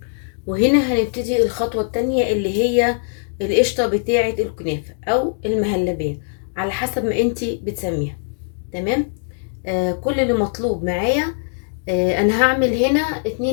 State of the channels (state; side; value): silent; right; digital silence